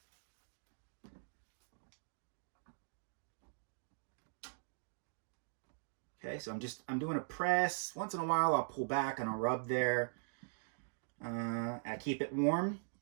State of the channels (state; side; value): silent; left; digital silence